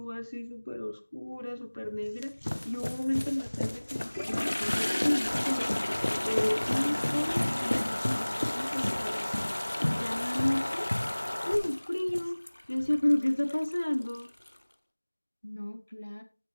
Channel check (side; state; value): both; inverted; correlation -1.00